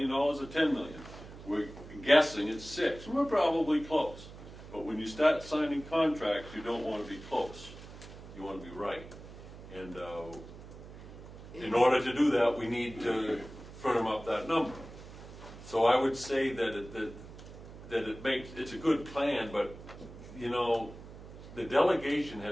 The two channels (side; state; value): right; noise; hum, 15 dB below the sound